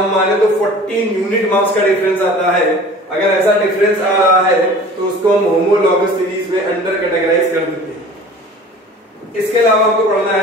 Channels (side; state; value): both; normal; correlation 0.43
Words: माने तो 14 यूनिट मास का डिफरेंस आता है। अगर ऐसा डिफरेंस आ रहा है तो उसको हम होमोलॉगस सीरीज में अंडर कैटेगराइज कर देते हैं। इसके अलावा आपको पढ़ना